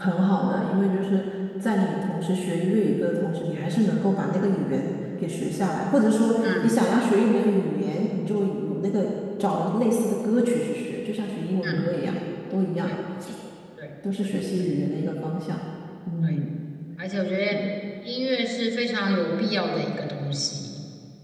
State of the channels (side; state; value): both; identical; correlation 1.00